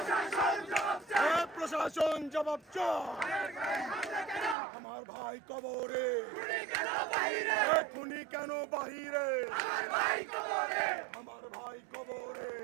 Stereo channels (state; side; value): drops out; left; at 4.5 s